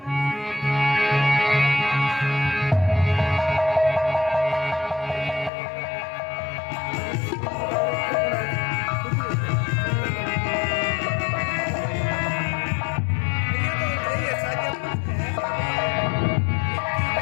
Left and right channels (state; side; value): drops out; right; at 5.5 s